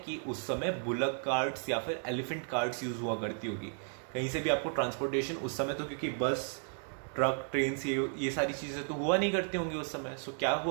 उस समय बुलक कार्ट्स या फिर एलिफेंट कार्ट्स यूज़ हुआ करती होगी। कहीं से भी आपको ट्रांसपोर्टेशन उस समय, तो क्योंकि बस, ट्रक, ट्रेन, ये सारी चीज़ें तो हुआ नहीं करती होंगी उस समय। सो क्या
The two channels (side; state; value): left; silent; 55 dB below the other